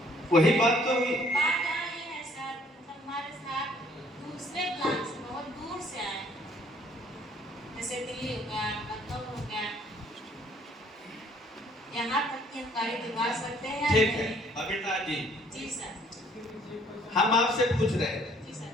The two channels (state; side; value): normal; both; correlation 0.60